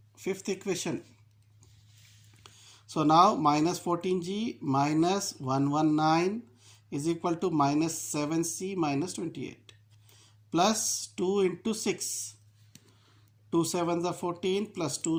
fifth equation. So now minus 14g minus 119 is equal to minus 7c minus 28 plus 2 into 6. 2 7s are 14 plus 2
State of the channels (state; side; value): identical; both; correlation 1.00